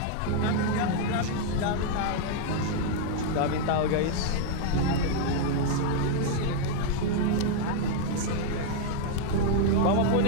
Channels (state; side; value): different; both; correlation 0.00